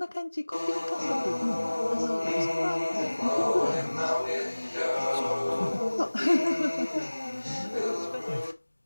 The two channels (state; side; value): inverted; both; correlation -1.00